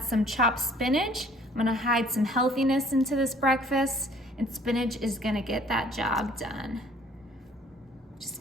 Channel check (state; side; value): normal; both; correlation 0.56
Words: some chopped spinach. I'm gonna hide some healthiness into this breakfast, and spinach is gonna get that job done. Just